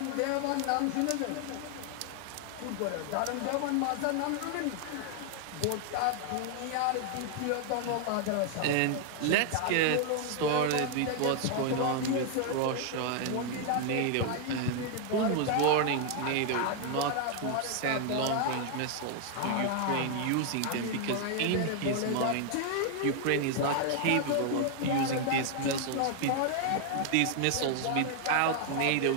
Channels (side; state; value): both; different; correlation 0.00